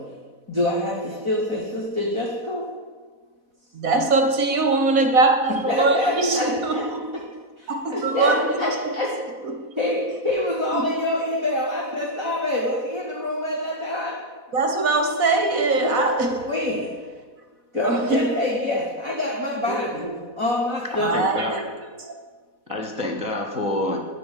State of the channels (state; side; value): late; left; 4.1 ms